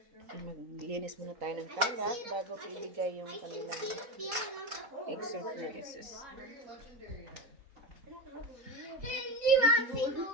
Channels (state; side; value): late; left; 4.1 ms